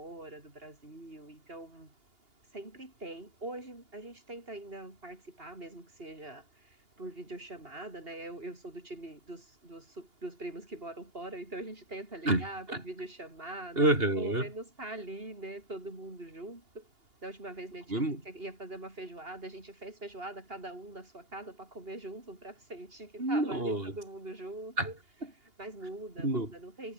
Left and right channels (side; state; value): left; late; 2.8 ms